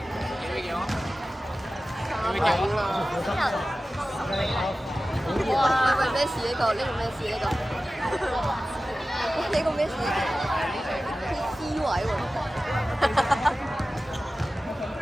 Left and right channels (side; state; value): both; normal; correlation 0.95